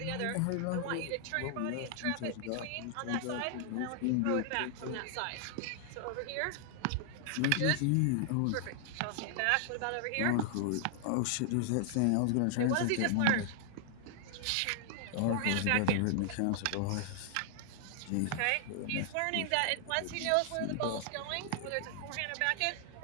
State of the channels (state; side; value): different; both; correlation 0.00